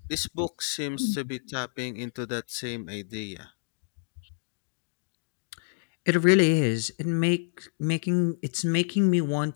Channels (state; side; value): silent; right; digital silence